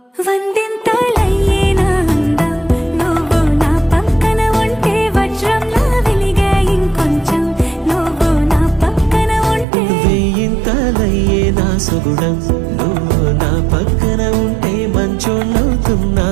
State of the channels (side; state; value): left; drops out; at 9.7 s